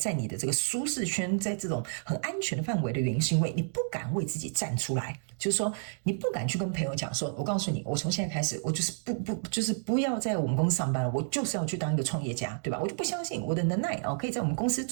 你的这个舒适圈，在这种很安全的范围的原因，是因为你不敢为自己站出来，就是说你不敢去跟朋友讲说，我告诉你，我从现在开始，我就是不要在我们公司上班了，我就是要去当一个创业家，对吧？我就不相信我的能耐可以在我们公司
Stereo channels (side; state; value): left; silent; digital silence